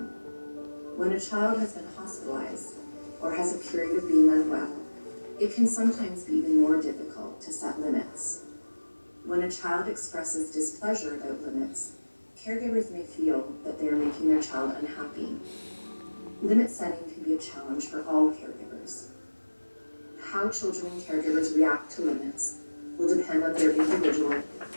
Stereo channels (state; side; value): inverted; both; correlation -1.00